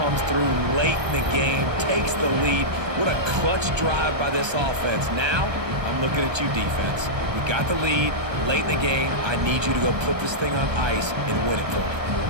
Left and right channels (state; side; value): late; left; 1.3 ms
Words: through late in the game, takes the lead. What a clutch drive by this offense. Now, I'm looking at you, defense. We got the lead late in the game. I need you to go put this thing on ice and win it for me.